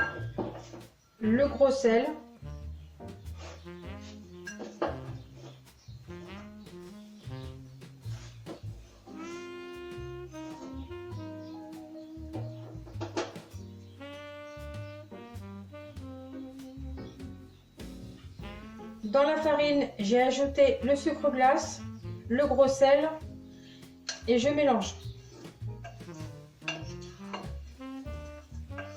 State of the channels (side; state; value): both; identical; correlation 1.00